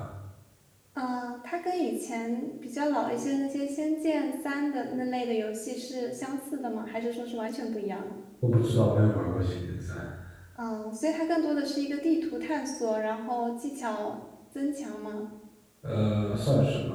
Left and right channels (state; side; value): identical; both; correlation 1.00